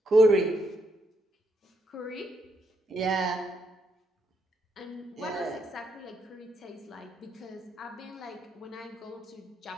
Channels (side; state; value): both; normal; correlation 0.77